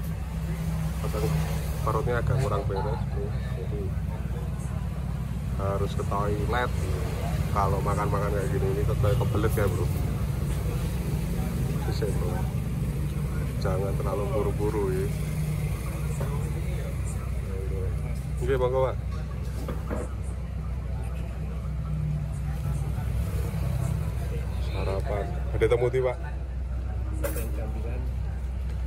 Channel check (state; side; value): identical; both; correlation 1.00